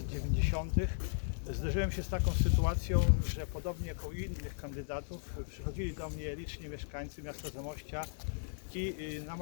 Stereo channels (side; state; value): right; silent; 54 dB below the other